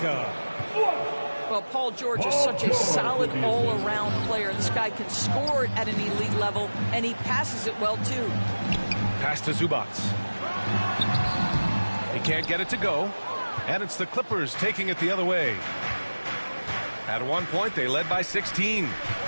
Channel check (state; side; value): inverted; both; correlation -1.00